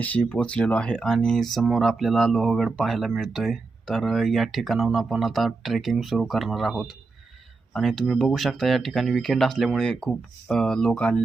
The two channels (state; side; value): quieter; left; 3.9 dB